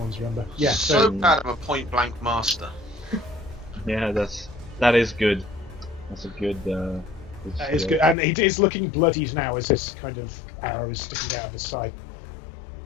Remember? Yeah. So bad I'm a point blank master. Yeah, that is good. That's a good. That is good, and it is looking bloodied now as this kind of arrow is sticking out of his side.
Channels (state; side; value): drops out; right; at 8.2 s